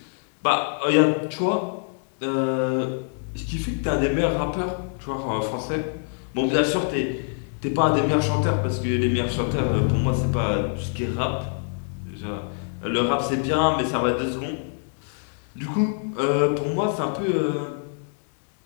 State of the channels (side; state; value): right; silent; 62 dB below the other